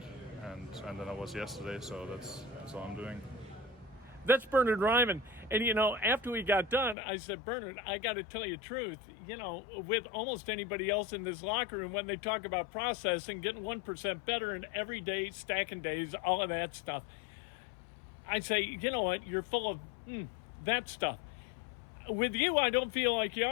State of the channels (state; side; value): drops out; right; at 7.0 s